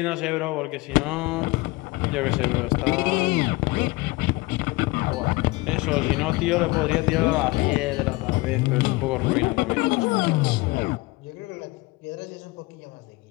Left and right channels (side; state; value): right; quieter; 22.4 dB